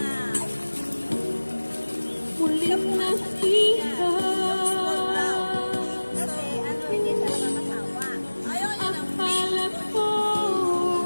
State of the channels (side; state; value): both; inverted; correlation -1.00